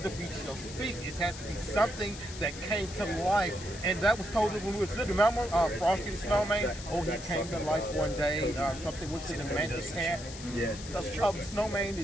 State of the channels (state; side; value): noise; left; hiss, 13 dB below the sound